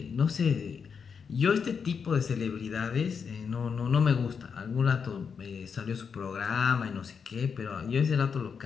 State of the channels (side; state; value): right; quieter; 6.3 dB